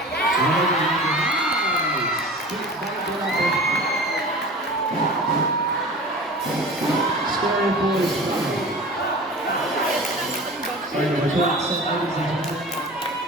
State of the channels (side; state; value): both; normal; correlation 0.37